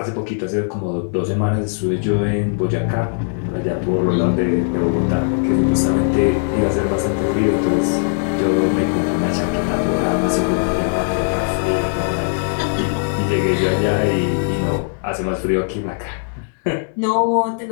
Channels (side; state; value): right; silent; digital silence